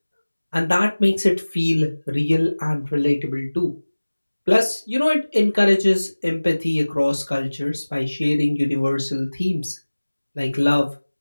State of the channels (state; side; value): inverted; both; correlation -1.00